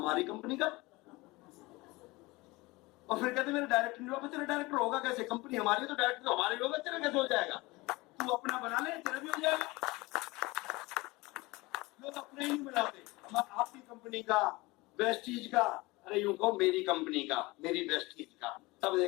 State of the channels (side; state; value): right; quieter; 22.4 dB